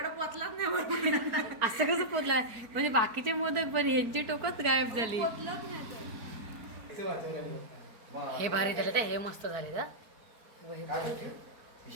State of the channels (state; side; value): late; left; 4.5 ms